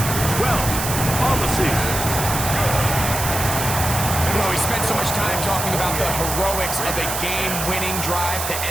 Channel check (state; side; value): noise; right; hiss, 4 dB below the sound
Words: 12 on the season. You know, we spent so much time talking about the heroics of a game-winning drive to